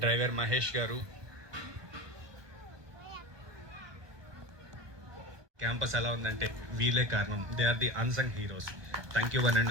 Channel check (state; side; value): late; left; 1.2 ms